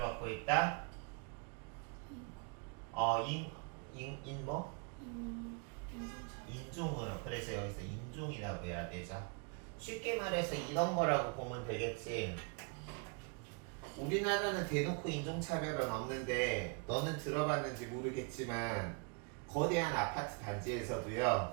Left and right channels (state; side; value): quieter; left; 35.0 dB